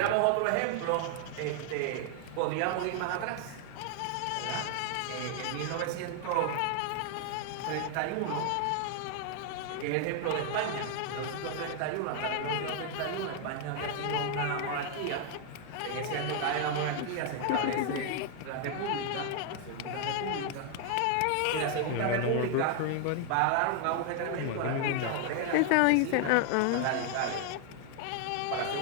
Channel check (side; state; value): both; different; correlation 0.00